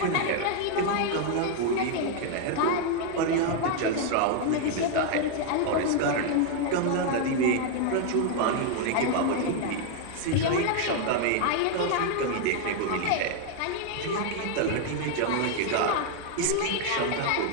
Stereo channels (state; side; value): different; both; correlation 0.00